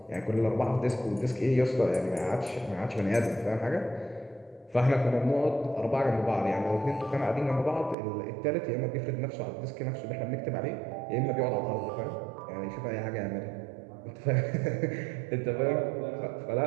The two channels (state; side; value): drops out; left; at 8.0 s